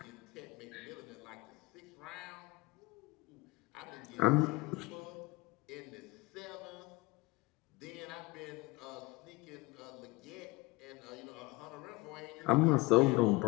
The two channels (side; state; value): right; quieter; 23.1 dB